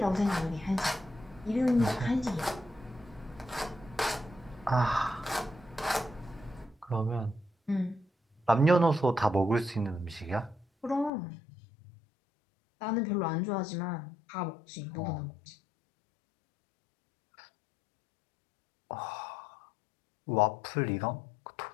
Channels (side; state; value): right; drops out; at 11.1 s